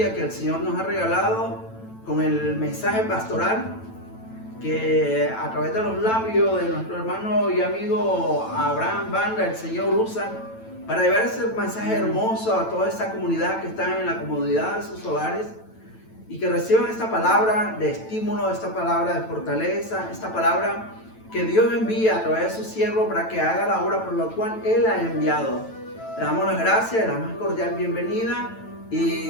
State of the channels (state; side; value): late; right; 9.0 ms